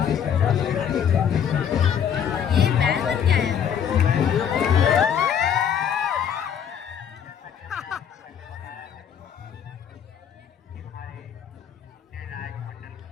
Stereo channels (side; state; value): right; quieter; 8.4 dB